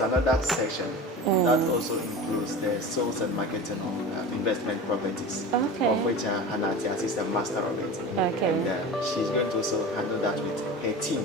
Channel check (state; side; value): normal; both; correlation 0.32